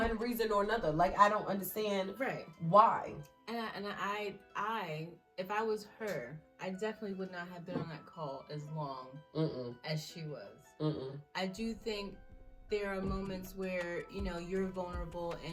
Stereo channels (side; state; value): both; identical; correlation 1.00